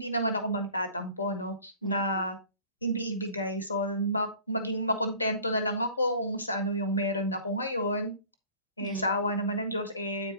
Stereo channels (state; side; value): inverted; both; correlation -0.47